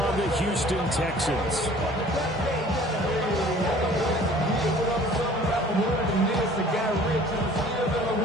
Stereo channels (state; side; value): normal; both; correlation 0.50